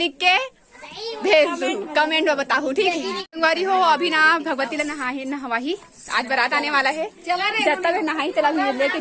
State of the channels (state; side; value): identical; both; correlation 1.00